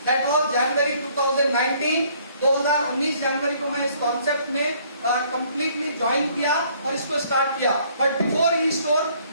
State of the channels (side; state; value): both; inverted; correlation -0.62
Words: दैट वाज जनवरी 2019। 2019 जनवरी को मैं इस कॉन्सेप्ट में कंप्लीटली ज्वाइन किया और इसको स्टार्ट किया। बट बिफोर ई स्टोर